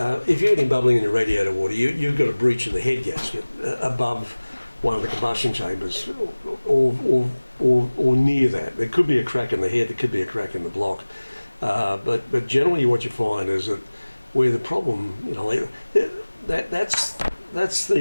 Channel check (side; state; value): both; inverted; correlation -1.00